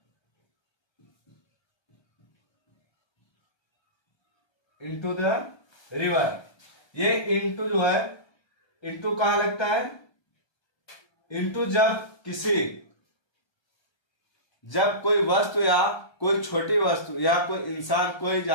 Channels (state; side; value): late; right; 1.3 ms